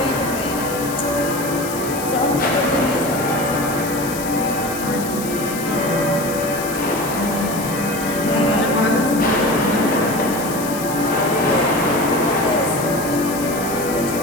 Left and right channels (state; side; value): noise; left; hiss, 10 dB below the sound